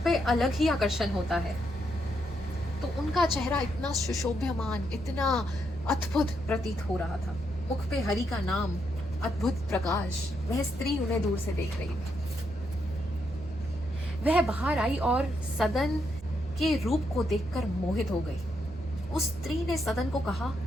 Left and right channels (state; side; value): noise; right; hum, 18 dB below the sound